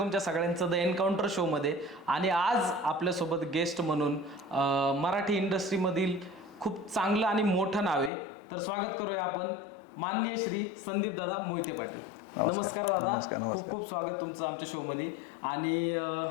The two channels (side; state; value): right; drops out; at 8.1 s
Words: सगळ्यांचं द एन्काउंटर शोमध्ये. आणि आज आपल्यासोबत गेस्ट म्हणून मराठी इंडस्ट्रीमधील खूप चांगलं आणि मोठं नाव आहे, तर स्वागत करूया आपण माननीय श्री संदीप दादा मोहिते पाटील. नमस्कार दादा, खूप खूप स्वागत तुमचं आमच्या शोमध्ये. आणि